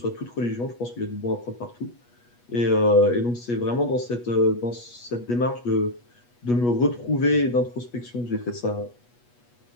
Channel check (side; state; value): right; late; 8.3 ms